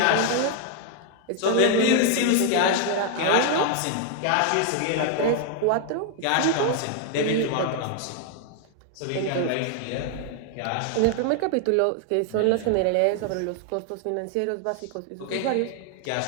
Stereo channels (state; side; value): different; both; correlation 0.00